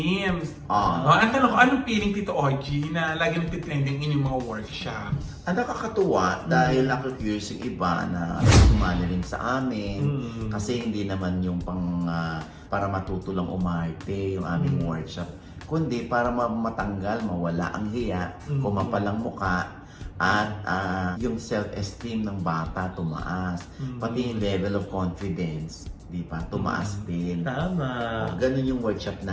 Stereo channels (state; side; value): identical; both; correlation 1.00